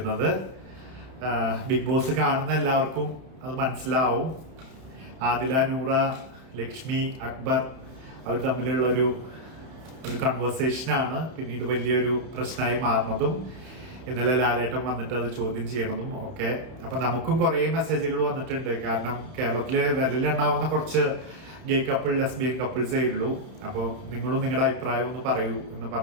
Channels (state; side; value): late; left; 31 ms